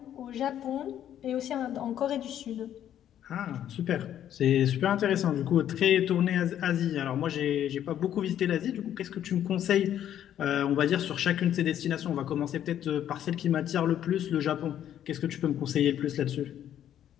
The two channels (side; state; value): right; quieter; 10.7 dB